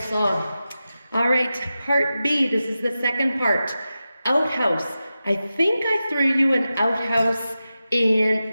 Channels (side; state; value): both; inverted; correlation -0.92